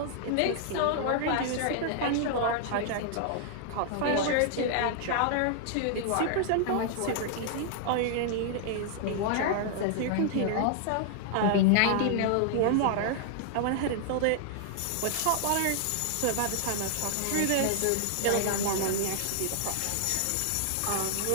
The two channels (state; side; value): different; both; correlation -0.01